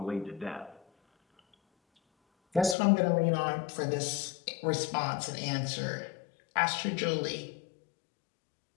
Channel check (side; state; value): right; drops out; at 2.8 s